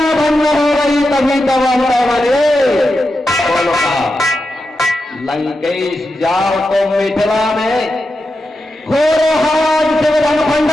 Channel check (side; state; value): both; normal; correlation 0.89